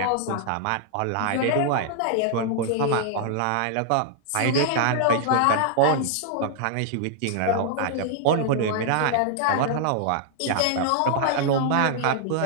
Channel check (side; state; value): both; different; correlation -0.01